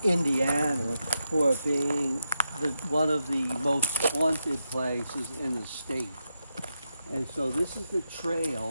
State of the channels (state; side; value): inverted; both; correlation -0.84